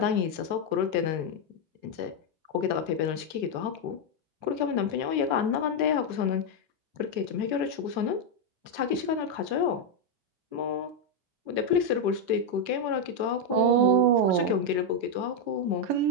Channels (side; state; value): left; late; 6.3 ms